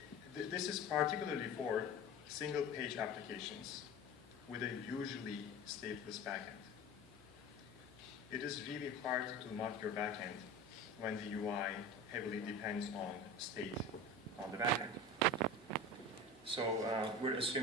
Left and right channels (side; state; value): left; noise; hum, 28 dB below the sound